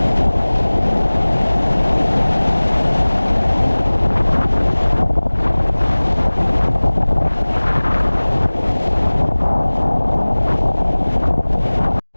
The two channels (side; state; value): both; inverted; correlation -1.00